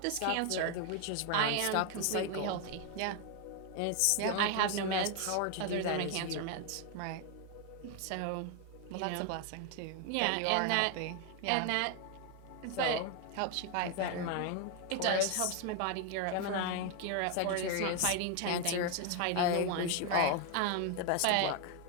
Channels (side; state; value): both; different; correlation 0.01